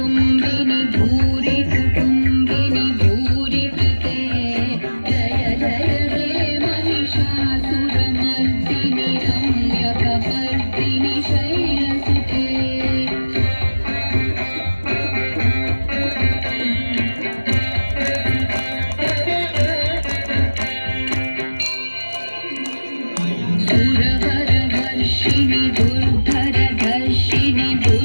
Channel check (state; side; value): inverted; both; correlation -1.00